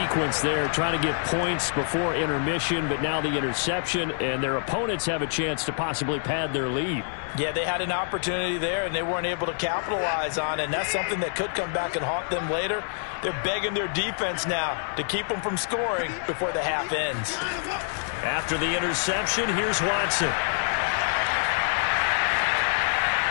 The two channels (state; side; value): silent; right; 61 dB below the other